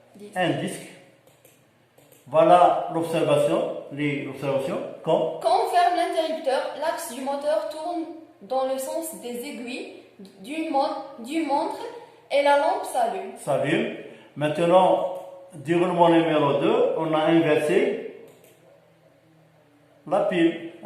disque. Voilà l'observation, Quand on ferme l'interrupteur, l'axe du moteur tourne dans le sens des aiguilles du montre et la lampe s'allume. Maintenant, déroulement numéro 2, on a inversé la pile.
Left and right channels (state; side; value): identical; both; correlation 1.00